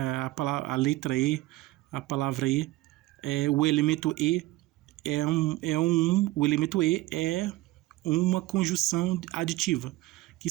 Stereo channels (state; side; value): quieter; left; 17.9 dB